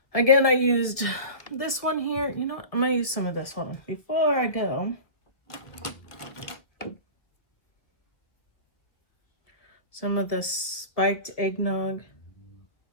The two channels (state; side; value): late; right; 1.5 ms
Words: Again, I used this one here. You know what? I'm going to use some of this one. Before I go, some of the spiked eggnog.